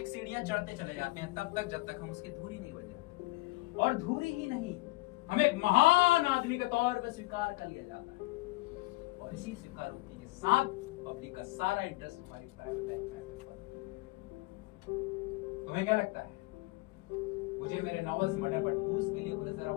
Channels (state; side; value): quieter; right; 22.4 dB